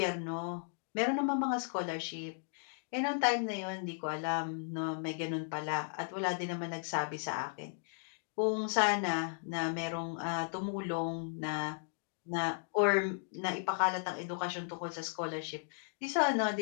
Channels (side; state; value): right; silent; digital silence